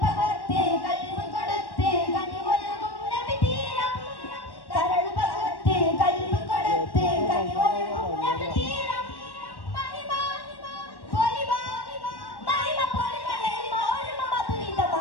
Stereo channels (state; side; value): late; right; 1.1 ms